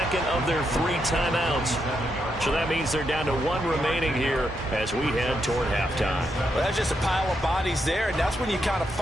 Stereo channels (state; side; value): normal; both; correlation 0.81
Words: of their 3 timeouts. So that means they're down to 1 remaining here as we head toward halftime. Well, that's just a pile of bodies there, and that's when you kind of